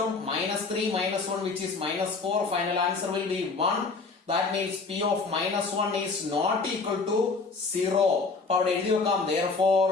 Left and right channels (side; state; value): right; quieter; 4.2 dB